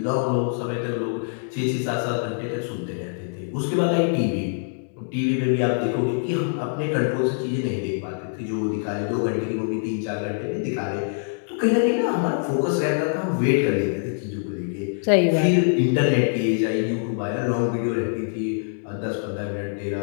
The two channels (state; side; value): silent; right; digital silence